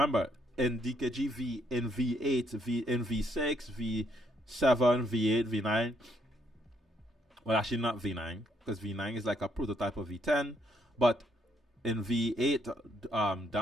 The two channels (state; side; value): normal; both; correlation 0.72